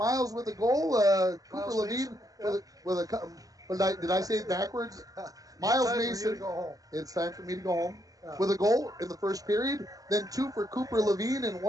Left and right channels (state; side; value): late; left; 0.17 ms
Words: with a goal. Cooper Levine with a. Did I say it backwards? Miles Mason. It's time for me to go home. Yeah. With a goal in the first period, then 2 for Cooper Levine and